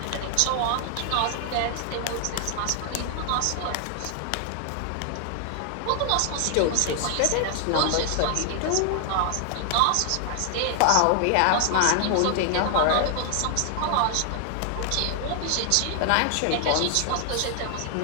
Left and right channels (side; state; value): both; different; correlation 0.00